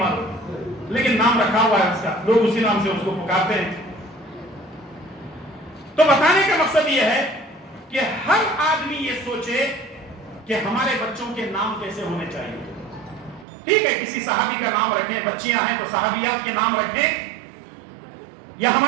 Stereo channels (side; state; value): left; drops out; at 13.5 s